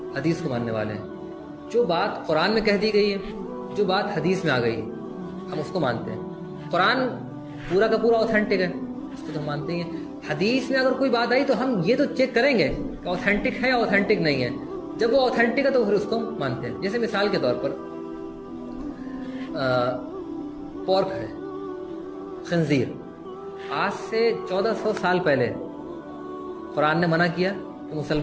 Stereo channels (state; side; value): identical; both; correlation 1.00